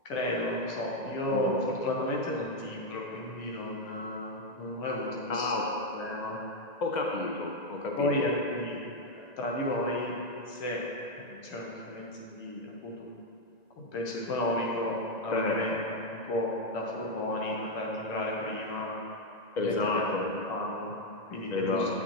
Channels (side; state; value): right; late; 1.9 ms